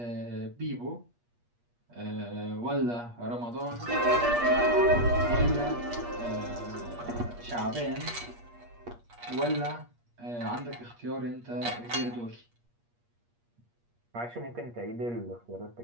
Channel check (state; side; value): late; left; 8.4 ms